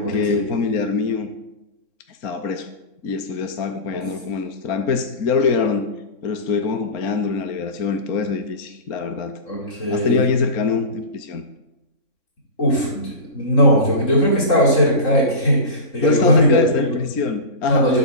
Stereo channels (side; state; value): right; late; 3.6 ms